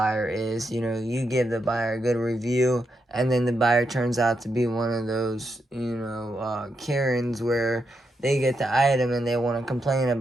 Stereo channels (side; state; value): both; normal; correlation 0.83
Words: is. You give the buyer a good review, and then the buyer turns out to be one of those, Karens where they get the item and they want to complain